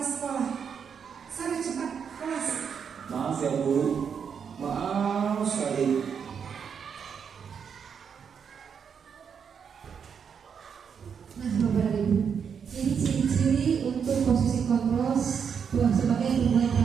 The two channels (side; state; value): left; quieter; 7.0 dB